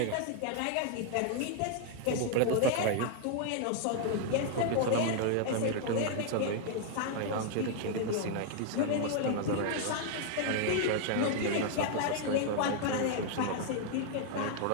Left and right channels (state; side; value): different; both; correlation 0.00